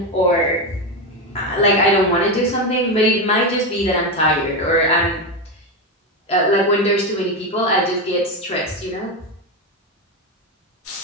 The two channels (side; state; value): both; normal; correlation 0.13